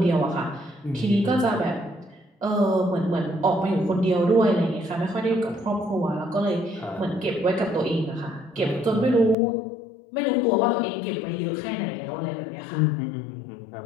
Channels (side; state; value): right; drops out; at 9.3 s